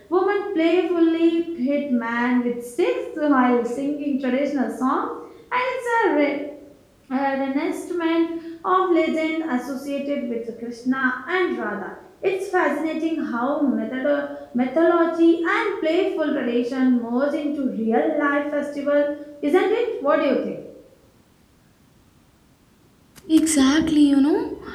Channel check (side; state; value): both; identical; correlation 1.00